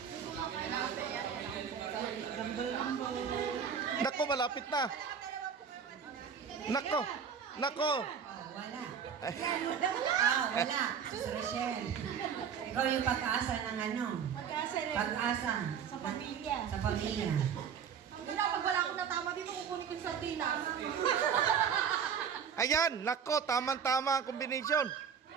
Nako, malapit na. Nako. Nako. Oh, wala. Wala. Sus Rochelle. Ikaw yung pag-asa ng ano? Pag-asa rin. Pag-asa. Sa pamilya. Sa pamilya. Wala, pag wala akong natama dito, kukunin ko yung sardinas. Ayan, nako, tamang-tama ang combination.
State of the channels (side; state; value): left; quieter; 7.3 dB